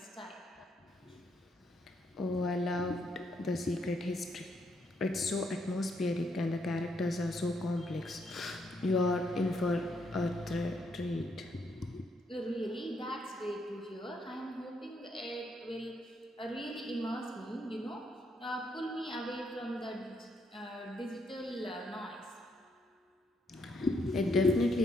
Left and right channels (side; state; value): both; normal; correlation 0.75